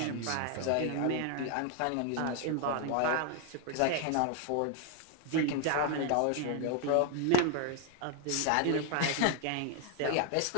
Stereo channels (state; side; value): different; both; correlation 0.00